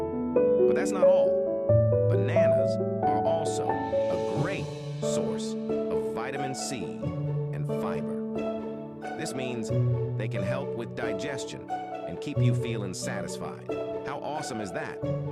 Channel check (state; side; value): identical; both; correlation 1.00